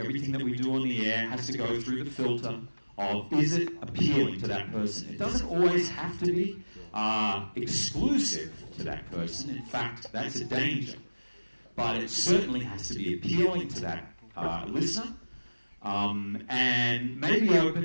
that we do on the air has to go through the filter of, is it appealing to that person? It doesn't always have to be exclusive to that person. In fact, that's a danger. But it certainly has to be appealing to that listener, and maybe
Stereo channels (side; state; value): both; inverted; correlation -1.00